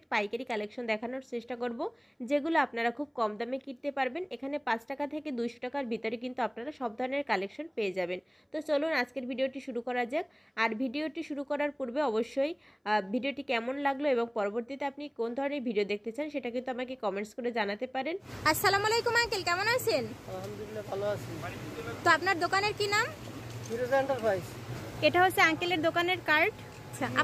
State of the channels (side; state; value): both; identical; correlation 1.00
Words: পাইকারি কালেকশন দেখানোর চেষ্টা করব, যেগুলো আপনারা খুব কম দামে কিনতে পারবেন। এখানে 5 টাকা থেকে 200 টাকার ভিতরে কিন্তু আপনারা সব ধরনের কালেকশন পেয়ে যাবেন। তো চলুন আজকের ভিডিওটি শুরু করা যাক। আর ভিডিওটি শুরু করার পূর্বে অবশ্যই ভিডিওটি কেমন লাগলো এবং পরবর্তীতে আপনি কোন ধরনের ভিডিও দেখতে চান সেটা কিন্তু আমাকে কমেন্টস করে জানাতে পারেন। আসসালামু আলাইকুম আঙ্কেল, কেমন আছেন? আলহামদুলিল্লাহ ভালো আছি। তো আপনার দোকানের কি নাম? ফিরোজ এন্টারপ্রাইজ। এটা হচ্ছে আঙ্কেলের দোকানের কার্ড। আচ্ছা,